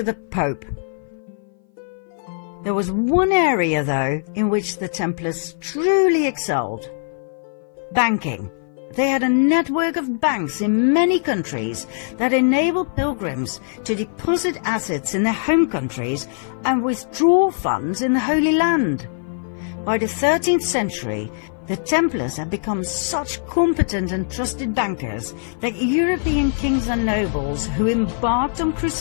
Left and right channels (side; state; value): right; silent; 57 dB below the other